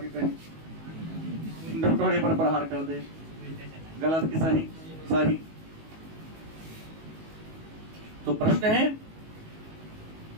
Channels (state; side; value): late; left; 19 ms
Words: कहीं डॉक्टर पर प्रहार कर दे। गलत कि सही? सही। तो प्रश्न है,